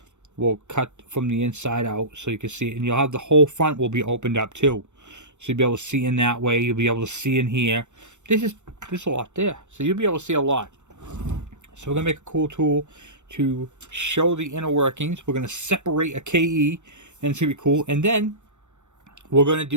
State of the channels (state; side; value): late; left; 0.84 ms